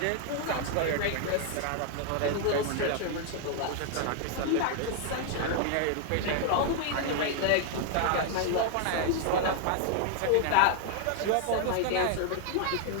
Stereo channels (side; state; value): both; different; correlation 0.00